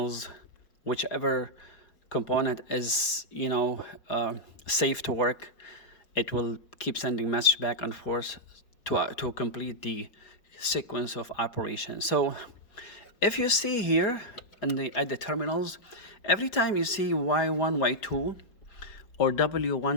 whichever component is, you know, safe to work, it will keep sending message back and forth to complete the sequence of operation. So if you see here at the terminals, every time you see Y1, Y2 or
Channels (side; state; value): right; late; 5.0 ms